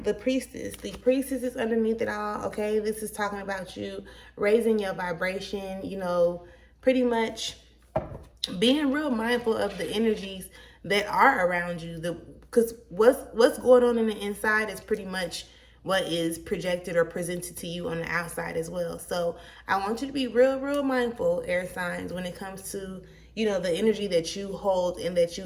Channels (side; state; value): both; identical; correlation 1.00